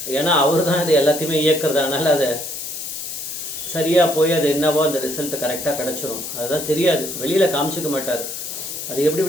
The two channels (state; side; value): noise; left; hiss, 7 dB below the sound